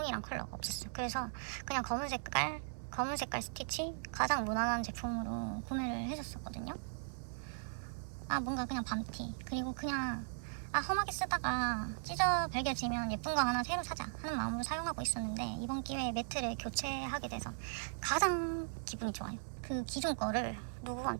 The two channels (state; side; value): silent; left; digital silence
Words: 컬러가 없었어요. 그래서 그냥 검은 색깔 스티치 가장 무난한 제품으로 구매를 해줬었거든요. 뭔가 그냥 밤티 그리고 그냥 험하게 쓰다가 찢어 발겨지면 예쁜 거 하나 새로 사자 하는 마음으로 사용하고 있었는데 이번 기회에 매트를 교체하게 돼서 가장 기분이 좋아요. 그 기존 거를